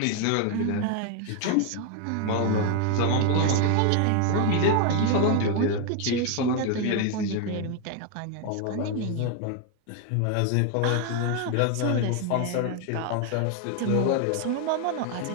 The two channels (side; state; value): both; different; correlation 0.01